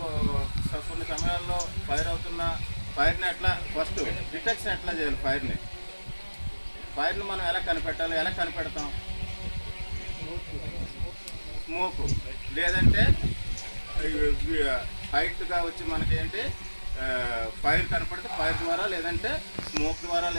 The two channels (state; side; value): inverted; both; correlation -1.00